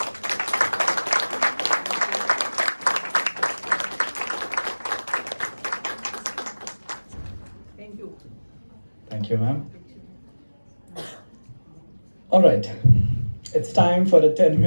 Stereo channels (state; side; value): inverted; both; correlation -1.00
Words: Thank you, ma'am. All right, it's time for a